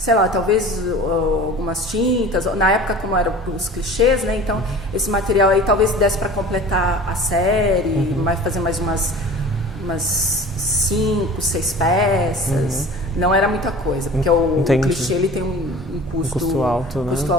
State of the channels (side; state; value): both; normal; correlation 0.41